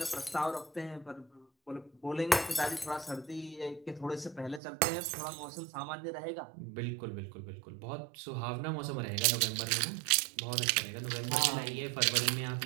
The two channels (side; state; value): left; drops out; at 4.6 s